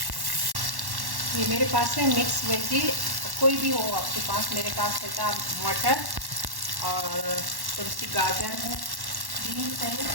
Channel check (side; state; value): left; late; 1.1 ms